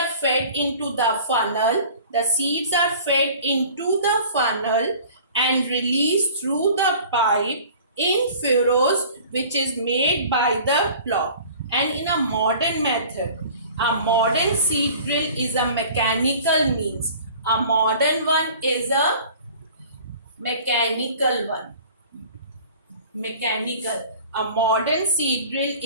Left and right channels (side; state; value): both; inverted; correlation -0.46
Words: fed into the funnel. The seeds are fed into the funnel and released through the pipe in furrows which is made by the plow. And in a modern method, a modern seed drill is a mechanical means. A modern one is a mechanical one. Mechanical. A modern seed drill